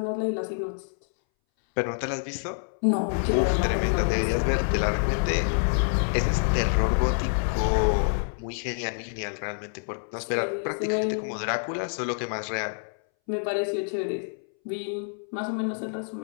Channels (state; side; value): silent; right; 60 dB below the other